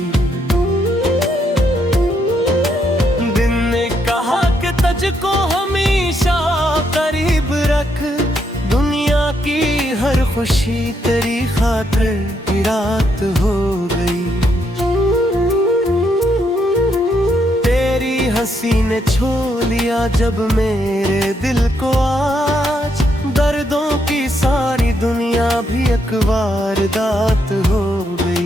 दिन ने कहा कि तुझको हमेशा करीब रख, दुनिया की हर खुशी तेरी खातिर की रात हो गई। हंसी ने छू लिया जब मेरे दिल को, आज दर्दों की सारी दुनिया भी एक वारदात हो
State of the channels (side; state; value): both; normal; correlation 0.76